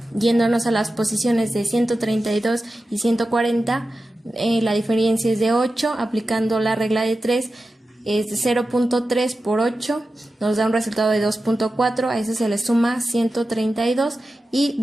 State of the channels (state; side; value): normal; both; correlation 0.93